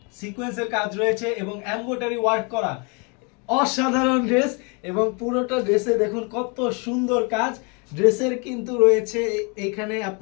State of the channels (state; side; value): quieter; right; 32.9 dB